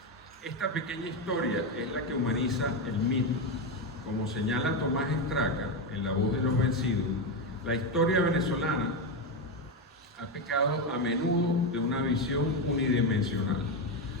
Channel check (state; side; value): normal; both; correlation 0.10